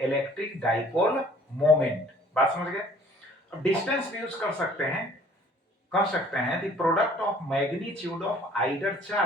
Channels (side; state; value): both; normal; correlation 0.55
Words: electric dipole moment. बात समझ गए? अब डिस्टेंस भी यूज कर सकते हैं, कह सकते हैं the product of magnitude of either